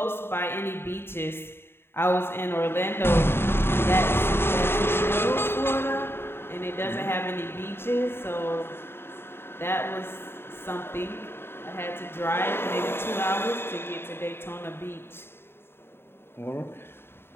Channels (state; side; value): late; right; 0.11 ms